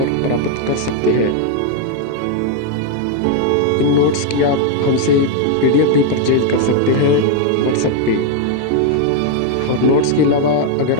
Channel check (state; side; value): different; both; correlation 0.00